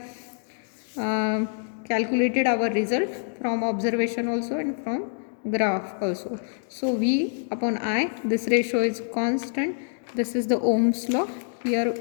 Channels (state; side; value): silent; right; digital silence